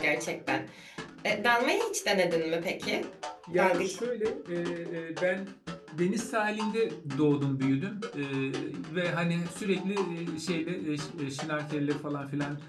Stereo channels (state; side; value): identical; both; correlation 1.00